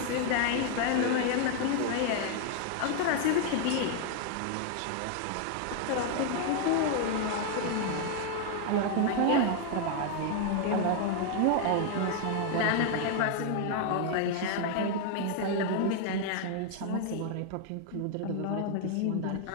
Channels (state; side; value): different; both; correlation 0.00